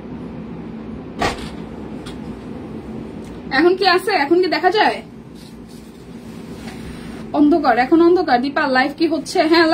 এখন কি আছে? এখন কি দেখা যায়? অন্ধকার, এখন অন্ধকার। দীপা, লাইভ কি হচ্ছে? হ্যাঁ,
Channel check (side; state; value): both; identical; correlation 1.00